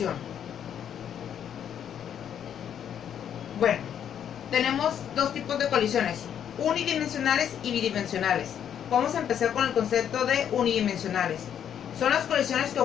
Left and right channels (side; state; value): right; quieter; 9.1 dB